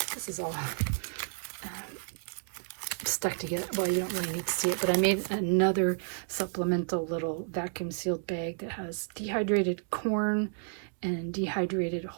this is all stuck together, well, you don't really need to see it, but I made another supplemental little vacuum sealed bag that has dehydrated corn and dehydrated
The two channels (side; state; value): left; silent; digital silence